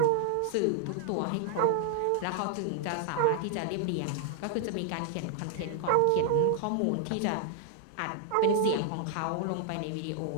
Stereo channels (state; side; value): different; both; correlation 0.00